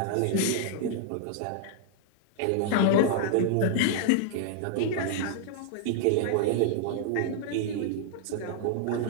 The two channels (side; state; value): both; different; correlation -0.01